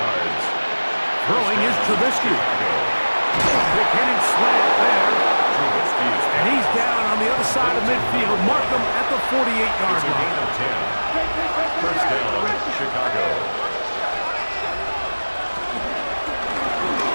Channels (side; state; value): both; inverted; correlation -1.00